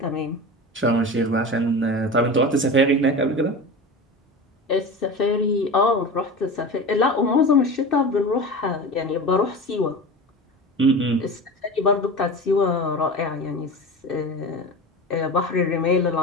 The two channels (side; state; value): both; normal; correlation 0.30